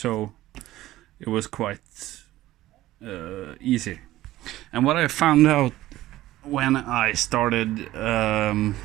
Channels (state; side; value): quieter; left; 15.7 dB